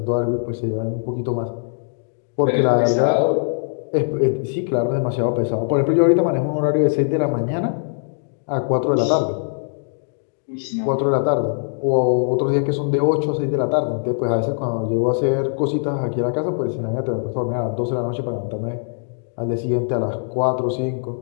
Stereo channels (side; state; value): right; silent; digital silence